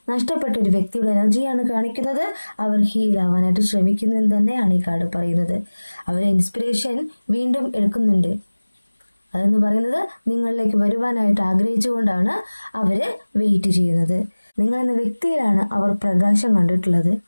നഷ്ടപ്പെട്ട ഒരു വ്യക്തിയുടെ എനർജിയാണ് കാണിക്കുന്നത്. അവർ ഹീൽ ആവാനായിട്ട് ശ്രമിക്കുന്നു എന്ന് തന്നെയാണ് ഈ കാർഡ് പറയുന്നത്. അവരെ ഇൻസ്പിറേഷൻ വീണ്ടും എടുക്കുന്നുണ്ട്. അതെന്ന് പറയുന്നത് നിങ്ങളിലേക്ക് വരുവാനായിട്ട് ആഗ്രഹിച്ചുകൊണ്ടാണ് അവര് വെയിറ്റ് ചെയ്യുന്നത്. നിങ്ങളെന്ന വ്യക്തിയിലാണ് അവർ പ്രകാശം കണ്ടിട്ടുള്ളത്.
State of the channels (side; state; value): both; inverted; correlation -1.00